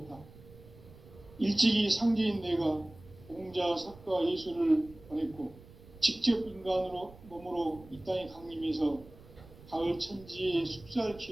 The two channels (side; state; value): right; noise; rumble, 21 dB below the sound